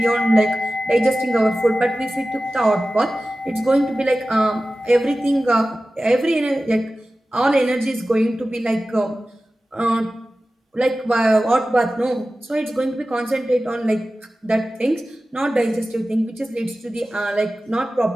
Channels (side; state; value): both; normal; correlation 0.95